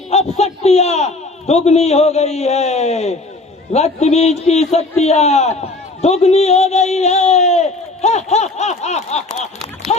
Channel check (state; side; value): quieter; right; 3.1 dB